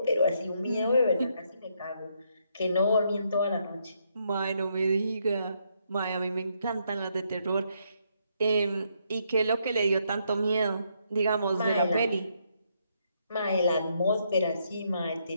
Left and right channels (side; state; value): both; inverted; correlation -0.75